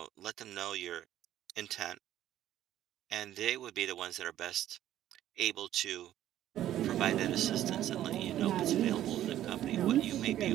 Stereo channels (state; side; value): quieter; left; 12.5 dB